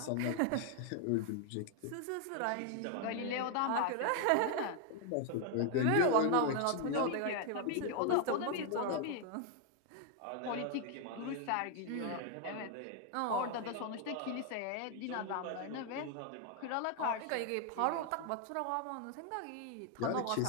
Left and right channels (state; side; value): different; both; correlation 0.00